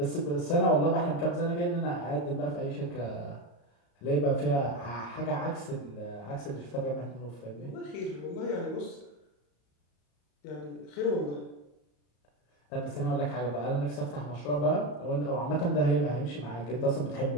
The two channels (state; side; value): late; right; 34 ms